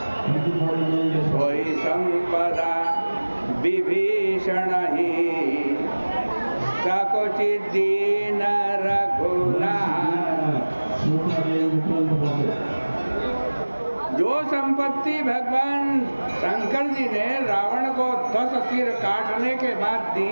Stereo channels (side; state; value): both; inverted; correlation -1.00